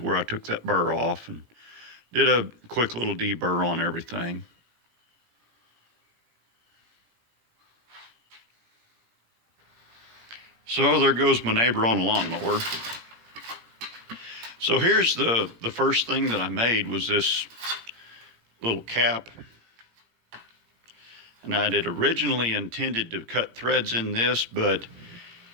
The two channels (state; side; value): late; left; 17 ms